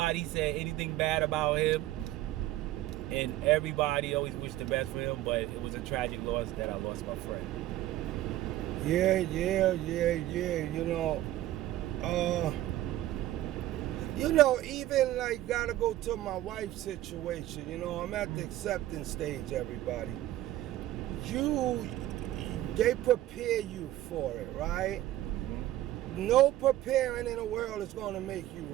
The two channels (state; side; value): quieter; left; 14.8 dB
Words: said anything bad about him, and everybody always wished the best for him, but it was a tragic loss that I lost my friend. Yeah. Even like gotta go to my wife's situation. I'm at the acceptance stage, everybody. They prepare you for it, right? No preparing in the world is gonna make you